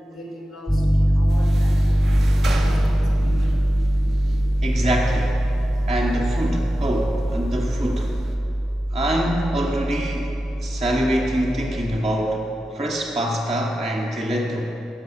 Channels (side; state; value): both; normal; correlation 0.92